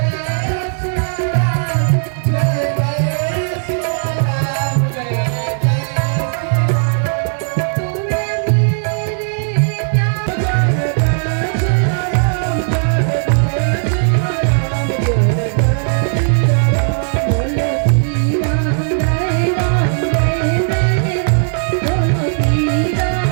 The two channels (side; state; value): left; silent; 69 dB below the other